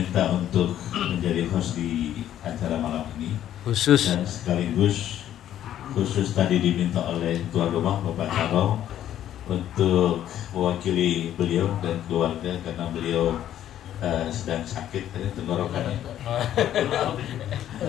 untuk menjadi host di acara malam ini Khusus. dan sekaligus khusus tadi diminta oleh tuan rumah Bapak Caro untuk mewakili beliau dan keluarga karena beliau sedang sakit tenggorokannya.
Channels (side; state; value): right; quieter; 11.4 dB